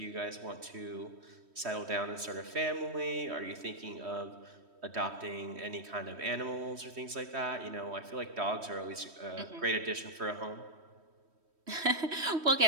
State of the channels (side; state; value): left; late; 3.1 ms